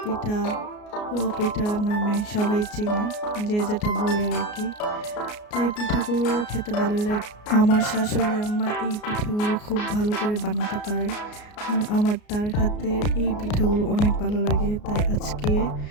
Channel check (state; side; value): late; right; 33 ms